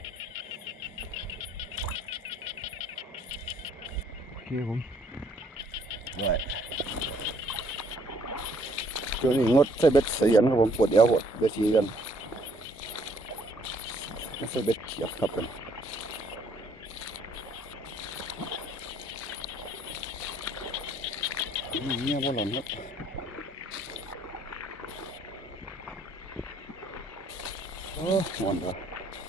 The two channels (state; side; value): normal; both; correlation 0.63